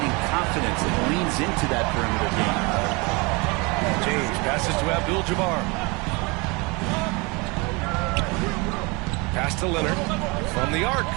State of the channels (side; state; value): left; quieter; 27.7 dB